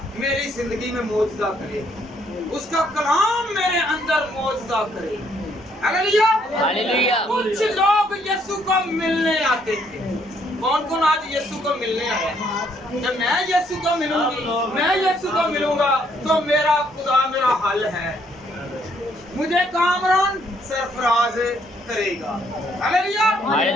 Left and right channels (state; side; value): normal; both; correlation 0.69